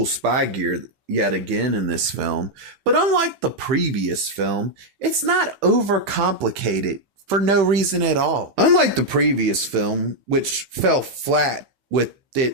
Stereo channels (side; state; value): left; late; 15 ms